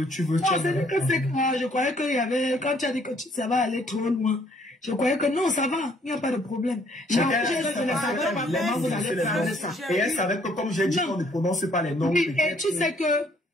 Non, c'est que c'est que je croyais qu'il y avait, quand tu as dit que ça va aller trop loin, je croyais que non, ça va, il n'y a pas de problème. Et elle savait que comme j'ai dit, on ne prononce pas les noms. Oui, et tu sais que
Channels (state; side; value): normal; both; correlation 0.64